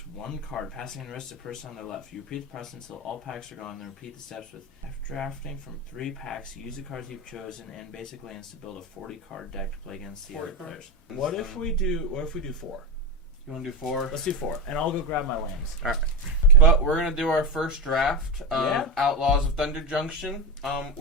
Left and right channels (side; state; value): both; normal; correlation 0.14